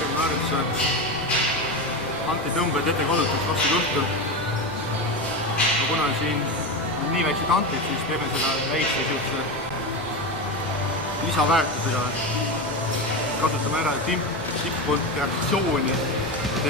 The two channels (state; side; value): noise; left; rumble, 25 dB below the sound